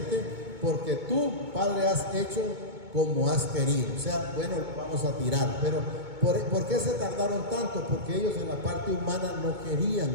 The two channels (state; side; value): late; left; 2.2 ms